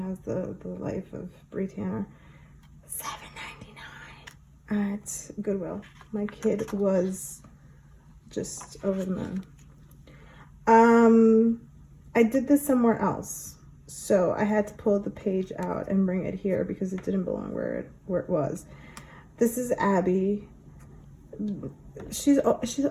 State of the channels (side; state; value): both; identical; correlation 1.00